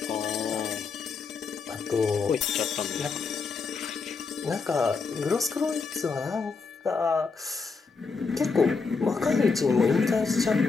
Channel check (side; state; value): right; quieter; 4.7 dB